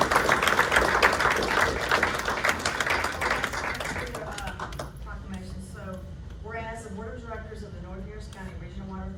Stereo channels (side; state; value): both; identical; correlation 1.00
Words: Proclamation. So, whereas the Board of Directors of the North Harris County Regional Water